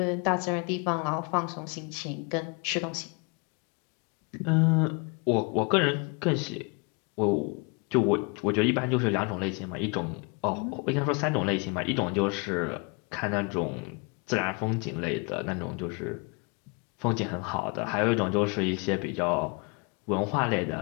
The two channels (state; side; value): quieter; right; 32.7 dB